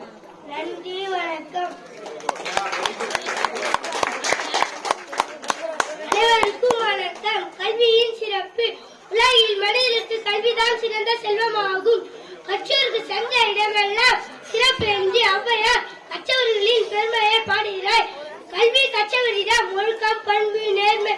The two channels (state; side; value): identical; both; correlation 1.00